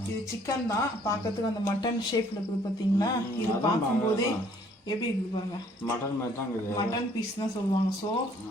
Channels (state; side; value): normal; both; correlation 0.61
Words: இது சிக்கன் தான், பார்க்கறதுக்கு அந்த மட்டன் ஷேப்ல இருக்குது பார்த்தீங்களா? இது பார்க்கும்போதே எப்படி இருக்குது பாருங்க, மட்டன் மாதிரி தான் இருக்குது. மட்டன் பீஸ் தான் சொல்லுவாங்க. ஸோ